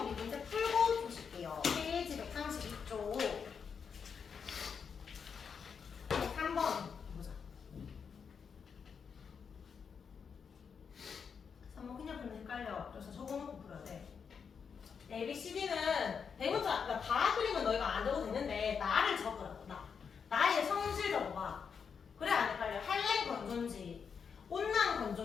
우리 문제 풀고 보실게요. 페이지 132쪽 3번 3번 그냥 풀면 헷갈려. 그래서 적어놓고 풀어야 돼. ABCD는 대문자, 그러니까 다 그리면 너희가 안 적어도 되는데 나를 적으라고. 나의 성질 적어봐. 그래 안 헷갈려. 한랭 건조인지 온난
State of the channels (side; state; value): right; quieter; 6.4 dB